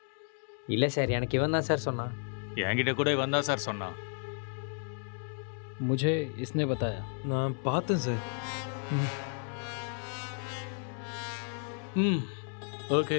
இல்ல சார், எனக்கு இவன் தான் சார் சொன்னான். என்கிட்ட கூட இவன் தான் சார் சொன்னான். मुझे इसने बताया. நான் பார்த்தேன் சார். ஓகே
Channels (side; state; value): right; silent; 56 dB below the other